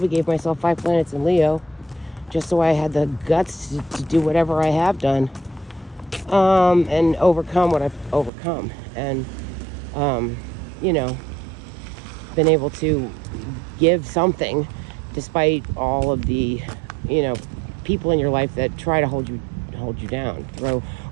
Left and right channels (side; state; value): left; drops out; at 8.3 s